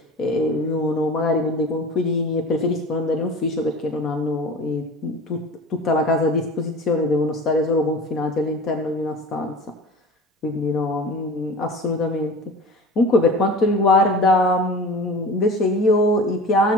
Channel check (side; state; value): both; normal; correlation 0.36